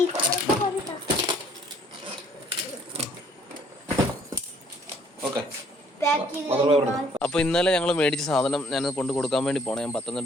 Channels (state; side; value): normal; both; correlation 0.62